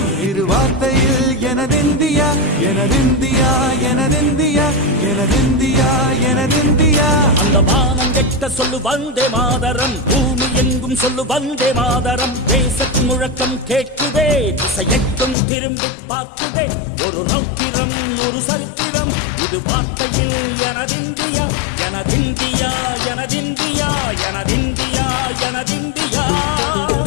இரு வார்த்தையில் எனதிந்தியா எனதிந்தியா எனதிந்தியா எனதிந்தியா எனதிந்தியா. அந்த வானம் எட்ட சொல்லு வந்தே மாதரம், பூமி எங்கும் சொல்லு வந்தே மாதரம். தேசத்தின் முழக்கம் கேட்குதே, திசை எட்டும் திரும்பி பார்க்குதே. ஒரு ரௌத்திரம் ஒரு சரித்திரம், இது வார்த்தையில் எனதிந்தியா எனதிந்தியா எனதிந்தியா எனதிந்தியா எனதிந்தியா.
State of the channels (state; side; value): drops out; right; at 15.4 s